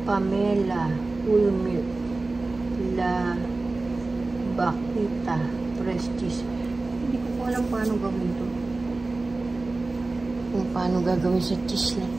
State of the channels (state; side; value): quieter; left; 3.3 dB